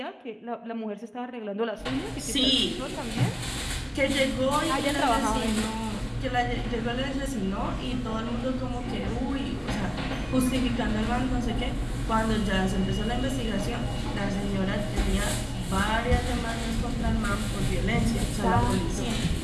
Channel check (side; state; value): both; identical; correlation 1.00